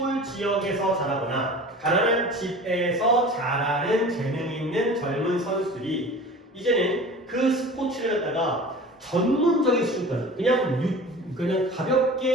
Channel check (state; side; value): normal; both; correlation 0.39